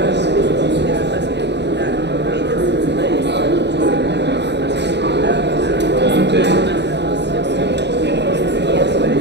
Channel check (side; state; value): left; late; 0.50 ms